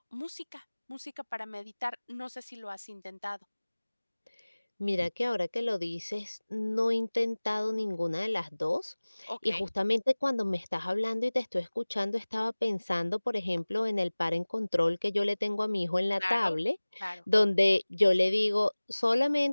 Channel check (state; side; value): inverted; both; correlation -1.00